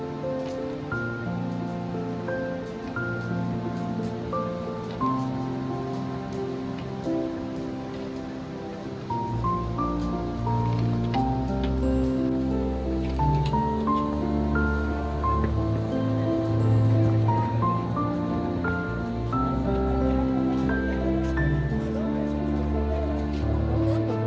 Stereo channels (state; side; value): identical; both; correlation 1.00